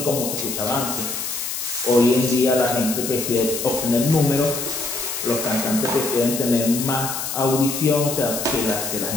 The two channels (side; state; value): left; noise; hiss, 4 dB below the sound